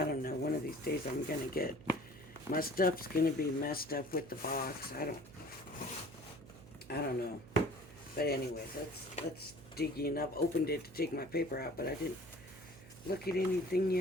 don't know. One of these days, I'm gonna get my stuff's gonna be messed up with the box. I don't know. But anyways, let's dig in. I've opened it to take my paper out, but I didn't look at anything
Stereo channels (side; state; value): right; noise; hum, 19 dB below the sound